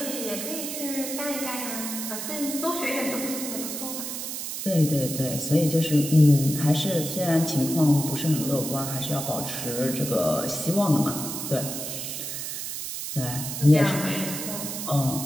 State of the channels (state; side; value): noise; right; hiss, 5 dB below the sound